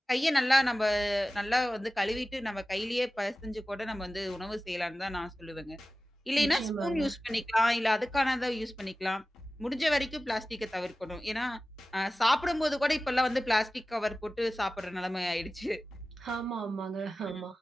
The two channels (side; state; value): both; normal; correlation 0.96